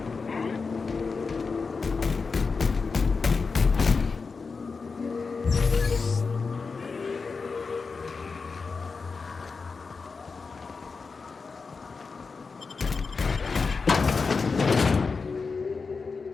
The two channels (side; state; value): right; quieter; 4.7 dB